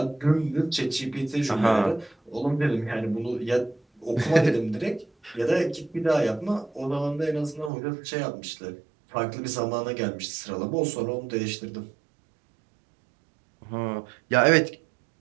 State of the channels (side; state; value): left; drops out; at 7.7 s